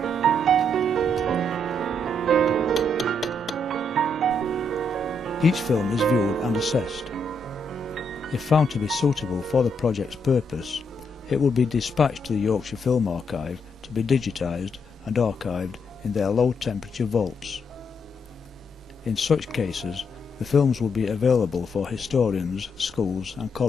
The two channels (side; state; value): both; normal; correlation 0.77